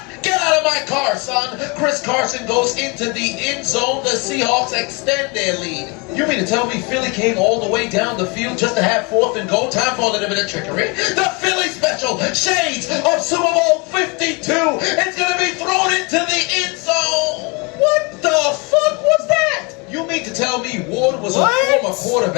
Get out of my car, son. Chris Carson goes into the end zone. The Seahawks extend their lead. You mean to tell me Philly came all the way down the field just to have 4th and goal? Time for a little bit of trickery. The Philly special, shades of Super Bowl 52. It's going to be thrown into the end zone. What the fuck was that? You mean to tell me Ward was a former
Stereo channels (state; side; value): quieter; right; 29.7 dB